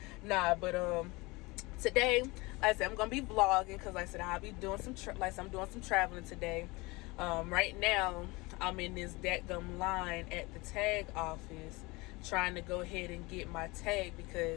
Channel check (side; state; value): right; quieter; 23.9 dB